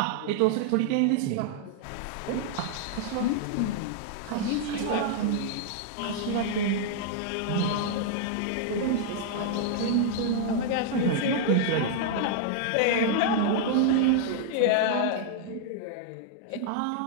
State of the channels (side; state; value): both; different; correlation -0.01